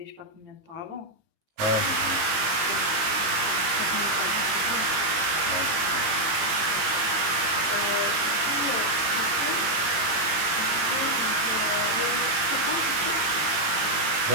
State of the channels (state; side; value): late; left; 18 ms